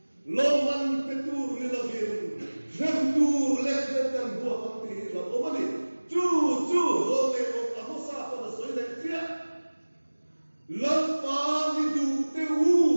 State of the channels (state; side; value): inverted; both; correlation -1.00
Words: loman petur lilavin jam tur lek kan buat ti la omani chu lo le o amosa pa na soi le tia lan pa ni du te u